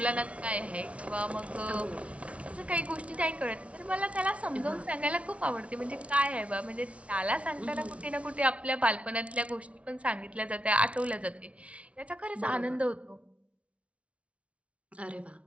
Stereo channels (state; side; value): late; left; 0.063 ms